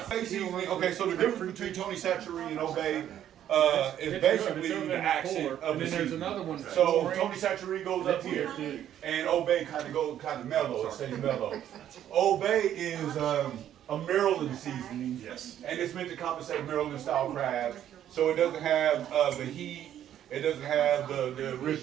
Basically, okay, so the difference between Tony Chachere and Obey is It's basically over the in accent cooler, of and the then there's season. another one. So orange. Tony Chachere goes up here, and Obey kind of mellow. It stays mellow. Obey is a Maryland seasoning, and it's meant to compensate Maryland style crabs. So it doesn't have the heat. It doesn't have the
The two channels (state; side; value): quieter; left; 10.9 dB